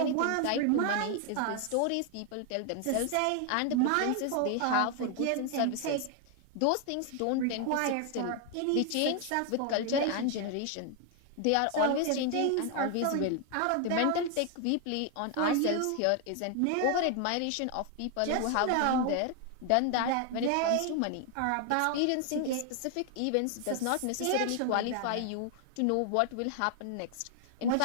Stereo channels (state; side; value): different; both; correlation 0.00